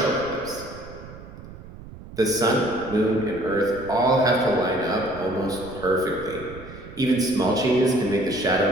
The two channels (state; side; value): noise; right; rumble, 16 dB below the sound